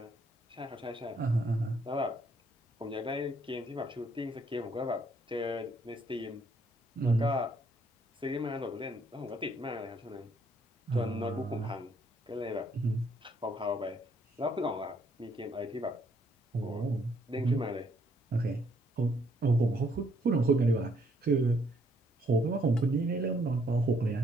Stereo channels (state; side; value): normal; both; correlation 0.69